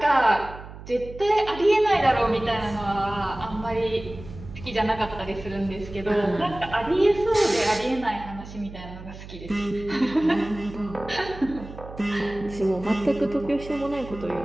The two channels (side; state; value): right; noise; hum, 14 dB below the sound